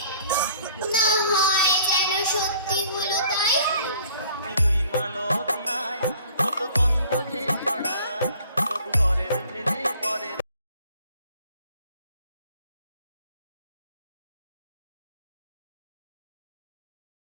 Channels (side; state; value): both; inverted; correlation -0.54